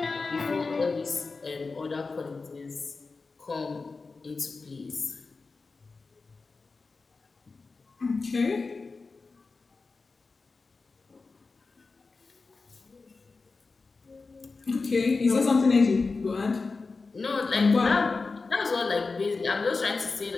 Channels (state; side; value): quieter; right; 4.1 dB